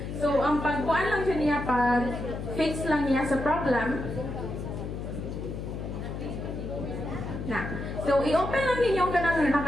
So, ang pagkuhan lang siya niya, pag-fix lang niya sa problem. Na. So, i-open lang ninyo ka ng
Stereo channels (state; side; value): noise; left; hum, 6 dB below the sound